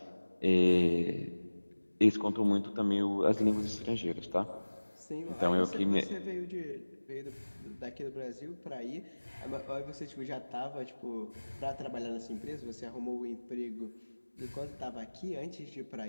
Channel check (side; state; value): both; inverted; correlation -1.00